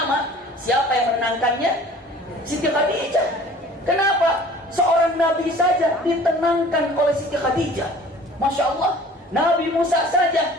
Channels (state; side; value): normal; both; correlation 0.47